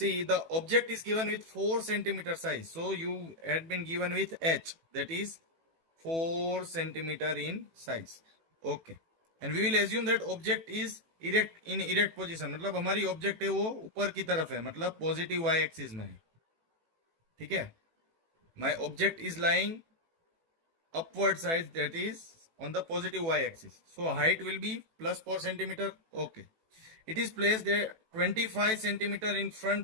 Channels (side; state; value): left; late; 18 ms